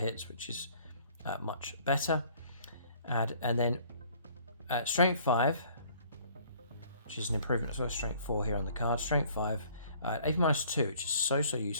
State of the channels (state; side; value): inverted; both; correlation -0.57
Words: which is much better. And then Strength 5, which is an improvement as well. Strength 4 here on the card. Strength 5, AP -2, which is so